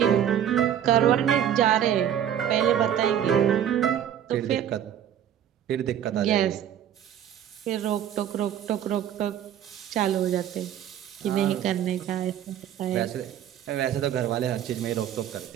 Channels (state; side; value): quieter; left; 10.1 dB